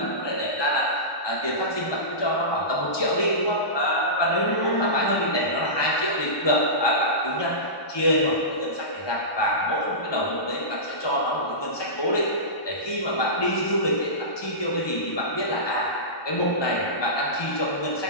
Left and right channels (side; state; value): right; late; 1.2 ms